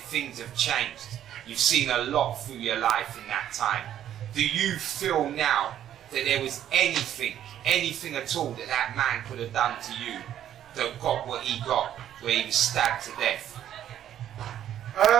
have changed. You've seen a lot through your life in that time. Do you feel now that there was anything at all that man could have done to you that got what he got, where he was stabbed to death?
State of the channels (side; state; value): left; quieter; 10.9 dB